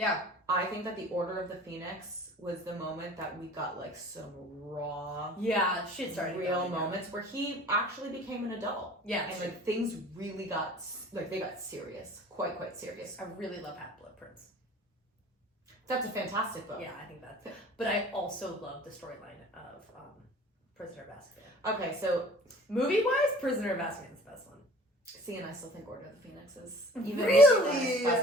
I think that the Order of the Phoenix was the moment that we got like some raw, shit started real going down. moments where he actually became an adult. Yeah, and like things really got they got serious, quite serious. I really love Half-Blood Prince. That's a fantastic book. Yeah, I think that's. But I also love the storyline of Prisoner of Azkaban. Okay, so movie-wise, Prisoner of Azkaban is the best one. See, and I still think Order of the Phoenix is really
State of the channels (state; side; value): normal; both; correlation 0.47